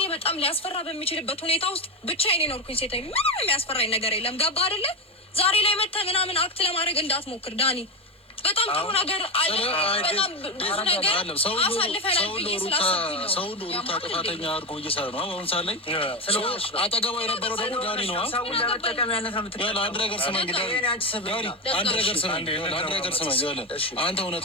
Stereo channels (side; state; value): both; normal; correlation 0.14